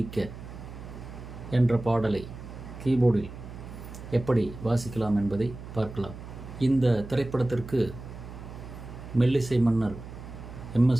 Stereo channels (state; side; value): noise; right; hum, 12 dB below the sound